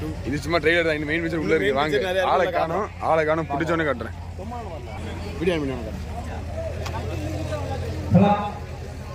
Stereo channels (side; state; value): both; identical; correlation 1.00